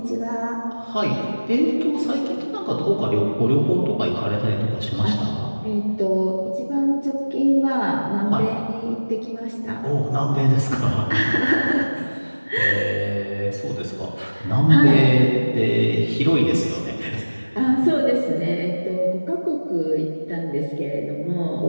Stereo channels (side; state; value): both; inverted; correlation -1.00